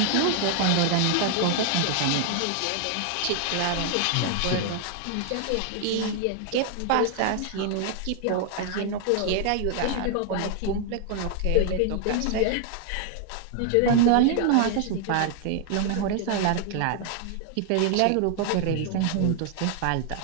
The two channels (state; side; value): different; both; correlation 0.00